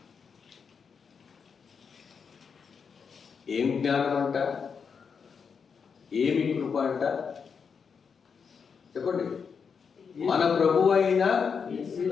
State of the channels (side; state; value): right; quieter; 6.1 dB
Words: ఏం జ్ఞానం అంట, ఏమి కృప అంట చెప్పండి. మన ప్రభు అయిన